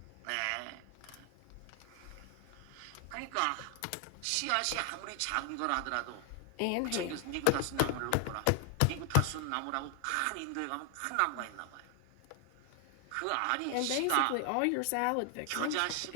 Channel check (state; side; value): different; both; correlation 0.00